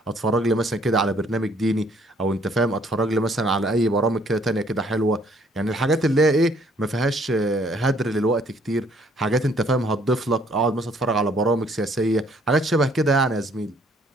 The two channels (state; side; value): normal; both; correlation 0.63